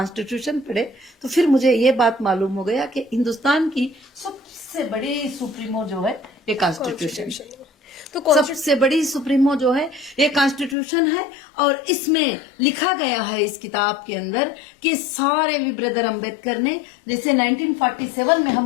पढ़े तो फिर मुझे ये बात मालूम हो गया कि हिंदुस्तान की सबसे बड़ी सुप्रीमो जो है ये कॉन्स्टिट्यूशन, तो सबसे बड़ी सुप्रीमो जो है ये कॉन्स्टिट्यूशन है। और इसमें लिखा गया है इस किताब के अंदर कि सारे भी ब्रदर अम्बेडकर ने, जैसे 1947 में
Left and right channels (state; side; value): drops out; right; at 10.8 s